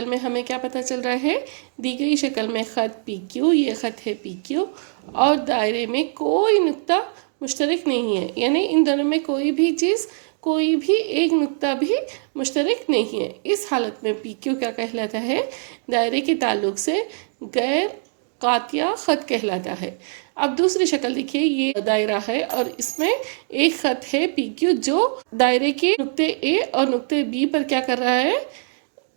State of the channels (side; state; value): left; silent; digital silence